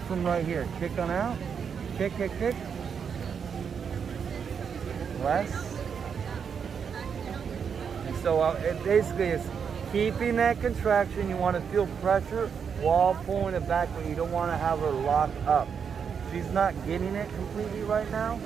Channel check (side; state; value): left; quieter; 6.8 dB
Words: from right here. Kick on out. Kick. Less. And so it basically is keeping that contraction. You want to feel pressure while pulling it back, but you don't want to have her lock up. She's not getting it completely right now,